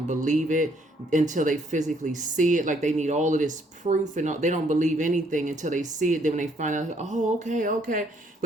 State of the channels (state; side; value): normal; both; correlation 0.67